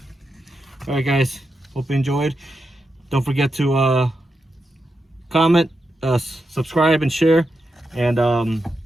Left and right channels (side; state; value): both; normal; correlation 0.87